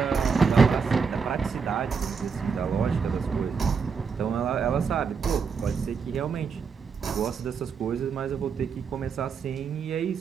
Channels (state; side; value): quieter; left; 5.8 dB